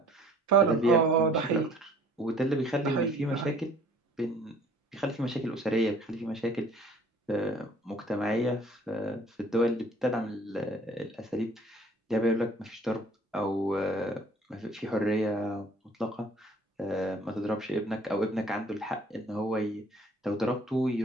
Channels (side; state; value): both; normal; correlation 0.54